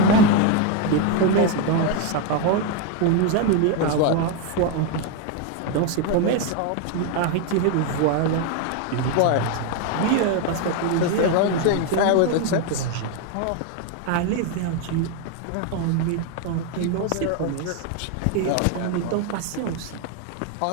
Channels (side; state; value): both; different; correlation 0.02